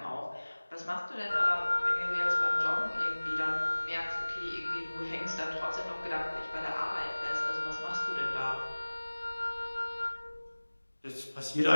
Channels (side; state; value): both; inverted; correlation -1.00